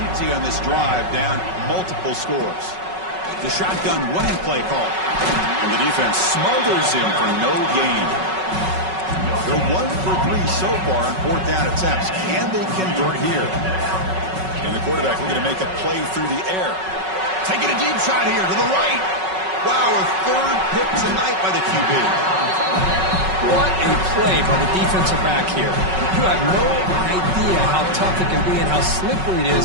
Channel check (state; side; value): late; left; 5.4 ms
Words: on this drive, down multiple scores. The shotgun running play call. And the defense smothers him for no gain. They're 1 for 3 so far on 4th down attempts. Can they convert here? And the quarterback looking to make a play through the air. Taking a deep shot here to the right. Wow, a 3rd pick tonight by the QB. What a play by the defensive back here. You have no idea how tough it can be and how slippery it